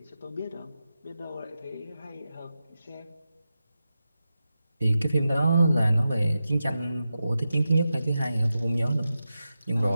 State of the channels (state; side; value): inverted; both; correlation -0.91